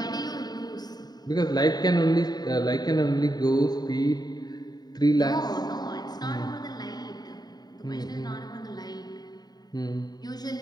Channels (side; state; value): right; late; 0.20 ms